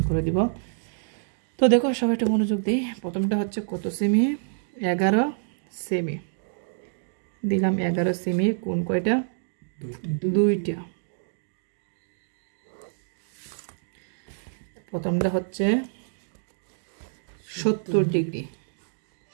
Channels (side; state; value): left; silent; digital silence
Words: করে দিব। তো দেখো সবাই একটু মনোযোগ দিই। প্রথমটা হচ্ছে কত সেমি, 11 সেমি দিলাম, 11 সেমি। কোণ কয়টা, 2টা। প্রথমটা হচ্ছে 70 ডিগ্রি,